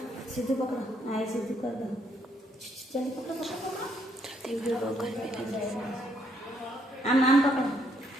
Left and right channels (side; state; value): both; normal; correlation 0.72